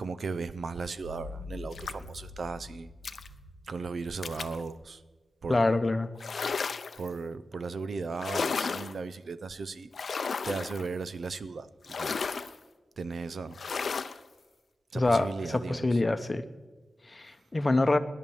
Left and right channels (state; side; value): normal; both; correlation 0.93